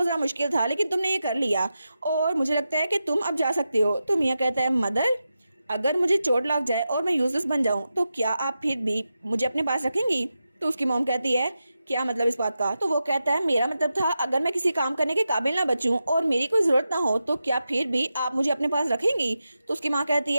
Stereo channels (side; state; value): both; inverted; correlation -0.90